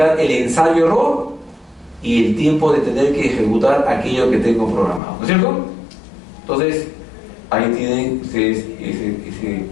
el ensayo-error y el tiempo de tener que ejecutar aquello que tengo programado. ¿No es cierto? Entonces, ahí tienen ustedes ese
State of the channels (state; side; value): drops out; right; at 5.0 s